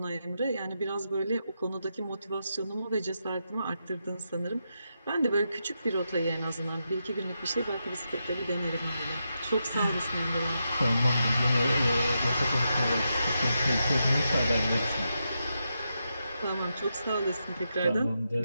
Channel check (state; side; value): inverted; both; correlation -0.85